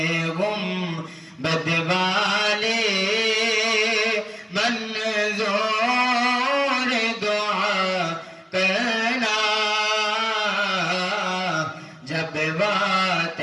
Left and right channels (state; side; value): identical; both; correlation 1.00